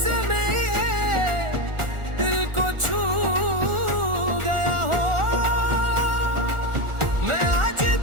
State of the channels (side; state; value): left; late; 1.4 ms